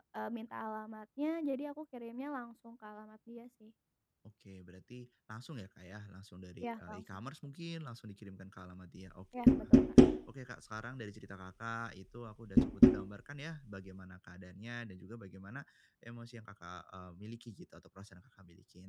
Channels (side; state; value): both; identical; correlation 1.00